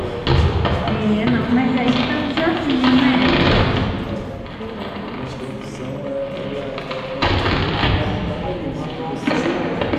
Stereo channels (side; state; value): both; identical; correlation 1.00